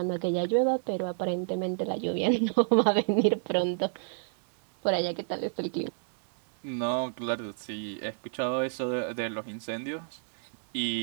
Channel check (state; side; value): silent; left; 58 dB below the other